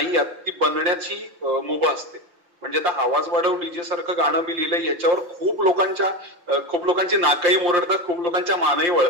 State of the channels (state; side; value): late; left; 5.7 ms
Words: आहात ती बनण्याची मुभा असते. म्हणजे आता आवाज वाढव डीजे सारखं गाणं मी लिहिलंय, याच्यावर खूप लोकांची नाकही मोरडतात, खूप लोकांच्या मानही